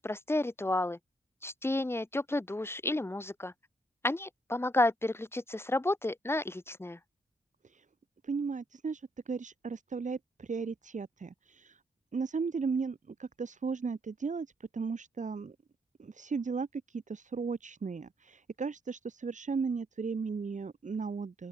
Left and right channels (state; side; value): normal; both; correlation 0.73